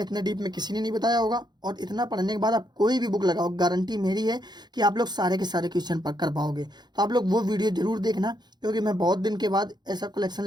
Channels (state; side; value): late; left; 0.21 ms